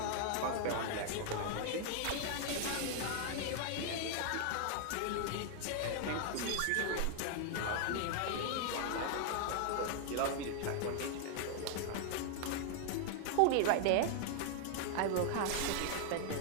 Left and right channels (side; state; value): both; different; correlation 0.00